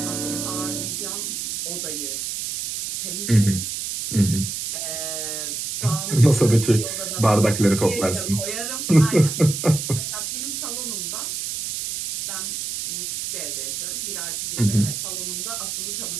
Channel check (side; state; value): right; noise; hiss, 4 dB below the sound